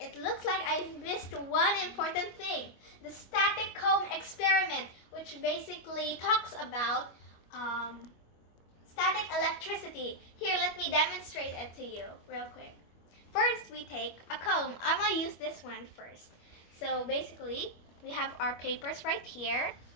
looks like I missed one important thing. The static comb experiment, which basically talks about static electricity. Here, let me demonstrate it to you real quick. First, we take a comb. I'm going to use this one first. So basically, we have our papers right here.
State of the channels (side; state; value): right; late; 25 ms